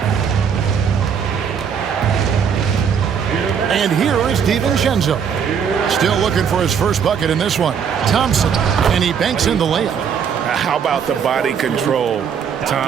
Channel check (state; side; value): quieter; left; 7.2 dB